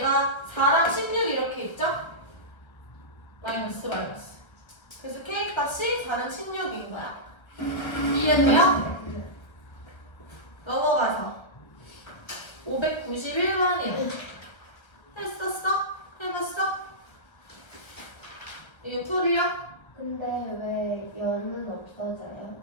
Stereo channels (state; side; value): late; right; 1.3 ms